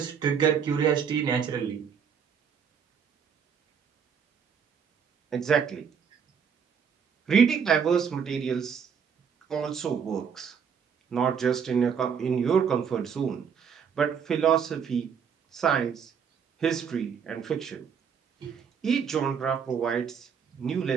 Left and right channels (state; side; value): quieter; left; 7.0 dB